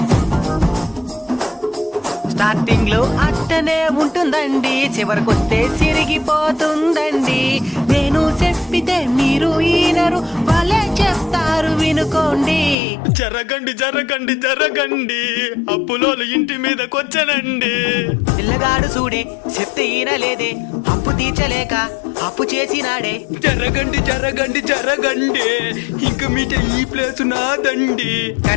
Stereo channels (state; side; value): drops out; right; at 12.8 s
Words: స్టార్టింగ్ లో అట్టనే ఉంటుందండి, చివరికొస్తే సిరిగిపోతుందండి. నేను చెప్పితే మీరు ఈనరు, వాళ్ళే చెప్తారు వినుకోండి. జరగండి జరగండి జరగండి అప్పులోలు ఇంటి మీదకొచ్చనండి. పిల్లగాడు చూడే చెప్తే ఈనలేదే, అప్పు తీర్చలేక అప్పు చేసినాడే. జరగండి జరగండి జరగండి ఇంక మీట ఈ ప్లేసు నాదండి.